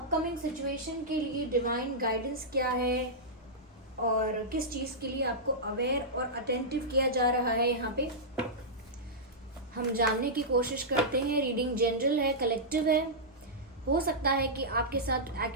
सिचुएशन के लिए डिवाइन गाइडेंस क्या है और किस चीज़ के लिए आपको अवेयर और अटेंटिव किया जा रहा है, यहाँ पे हम जानने की कोशिश करते हैं। रीडिंग जनरल है, कलेक्टिव है, हो सकता है कि आपके साथ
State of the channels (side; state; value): both; normal; correlation -0.12